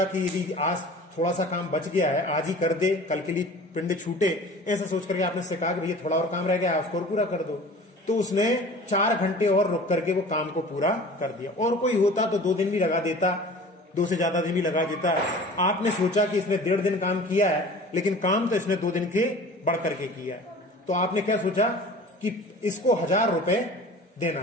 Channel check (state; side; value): normal; both; correlation 0.42